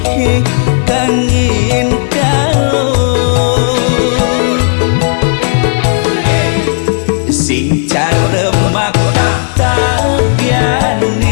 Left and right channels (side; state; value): right; silent; digital silence